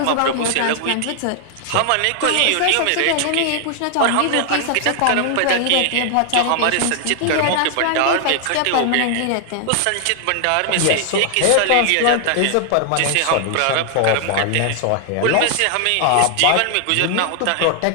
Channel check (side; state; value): both; different; correlation 0.00